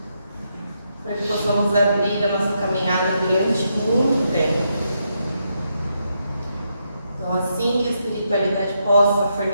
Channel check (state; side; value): inverted; both; correlation -0.80